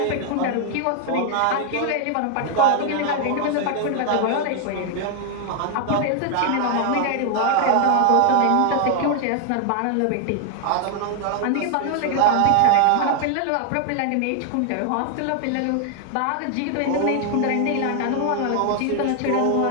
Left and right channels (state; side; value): different; both; correlation 0.00